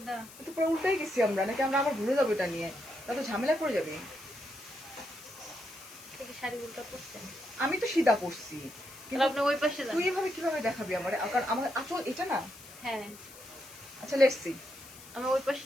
তো পুরো উল্টাই গেছি আমরা, নাকি আমরা আবার ভুলে যাবো এটা নিয়ে? তা তো ঝামেলা পড়ে যাবে। থেকে শাড়ি উল্টা পড়ছেন। আমি তো সিধা পড়ছি, তাহলে আপনি ওই পাশে যান। তুই এভাবে কিভাবে দেখাবি আমার? কারণ আমার আঁচল এটা না। হ্যাঁ, আচ্ছা লেটস সি। আমি ওই পাশে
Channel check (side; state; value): left; noise; hiss, 18 dB below the sound